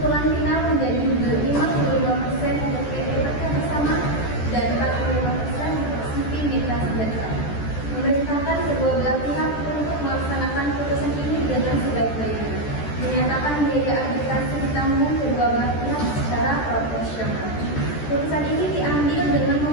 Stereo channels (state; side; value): late; right; 14 ms